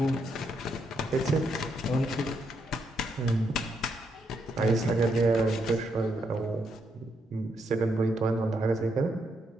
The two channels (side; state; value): both; normal; correlation 0.78